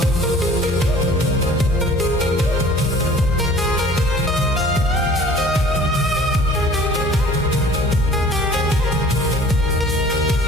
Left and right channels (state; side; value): normal; both; correlation 0.48